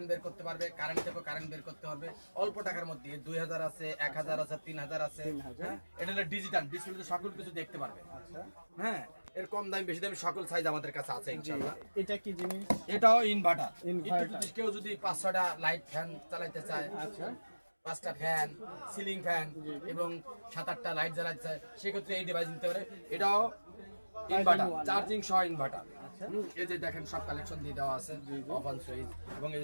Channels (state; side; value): inverted; both; correlation -1.00